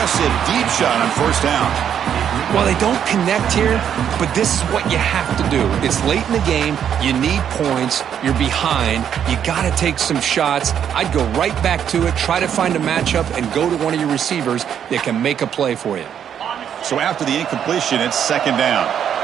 deep shot on 1st down. Well, they don't connect here, but this is what you have to do. It's late in the game. You need points. You're behind. You got to take some shots. I'd go right back to it, try to find a matchup, and go to one of your receivers that can make a play for you. So after the incompletion, it's 2nd down.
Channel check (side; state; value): left; quieter; 8.9 dB